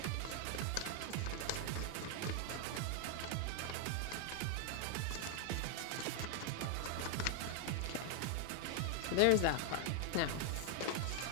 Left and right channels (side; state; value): both; different; correlation 0.00